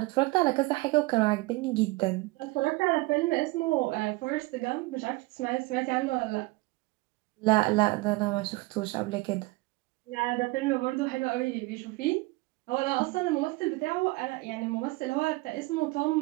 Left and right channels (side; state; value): left; quieter; 22.7 dB